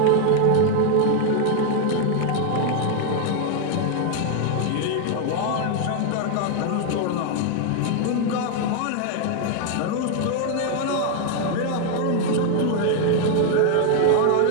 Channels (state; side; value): different; both; correlation 0.00